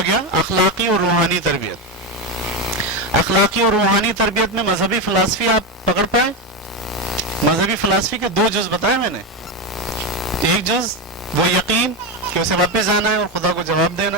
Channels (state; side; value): normal; both; correlation 0.13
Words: گیا اخلاقی اور روحانی تربیت. اخلاقی اور روحانی تربیت میں مذہبی فلسفی آپ پکڑ پائے؟ مذہبی فلسفی کے 2 جز بتائے میں نے. ایک جز وہ یقین کہ اسے واپس جانا ہے اور خدا کو جواب دینا